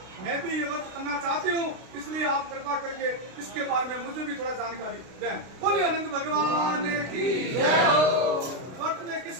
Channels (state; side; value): late; left; 32 ms